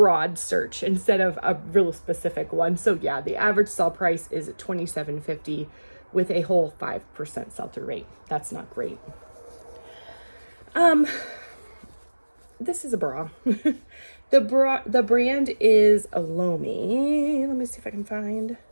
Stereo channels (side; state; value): both; inverted; correlation -1.00